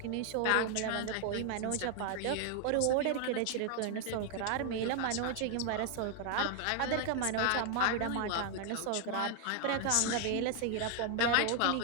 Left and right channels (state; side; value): different; both; correlation 0.00